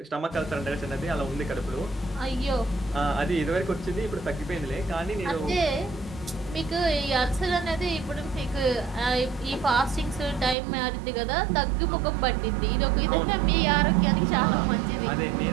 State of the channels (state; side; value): drops out; left; at 10.6 s